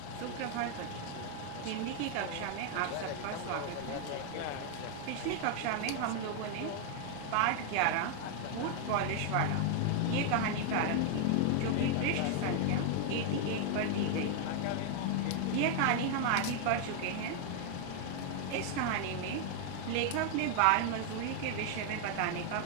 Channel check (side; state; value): both; different; correlation 0.00